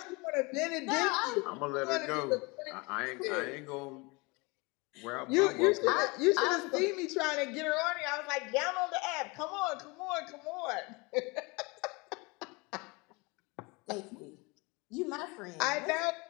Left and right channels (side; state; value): right; quieter; 26.7 dB